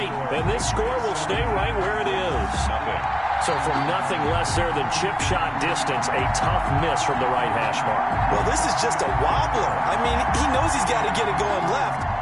And this score will stay right where it is. So from nothing less there than chip shot distance, a tough miss from the right hash mark. Well, this is just a wobbler. I mean, he knows he's got to get it going left,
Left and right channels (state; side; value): identical; both; correlation 1.00